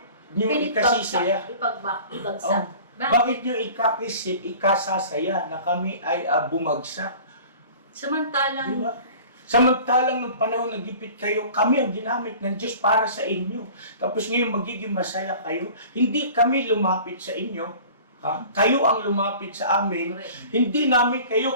nyo ikasisaya? Ibagsak. Bakit nyo ikasasaya na kami ay bumagsak? Samantalang, Di ba? Samantalang nung panahon nagipit kayo, kami ang ginamit ng Diyos para sa inyo. Tapos ngayon magiging masaya kayo. Hindi kami lumapit sa inyo. Ha? Kayo ang lumapit sa amin. correct. Hindi namin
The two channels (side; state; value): both; inverted; correlation -0.43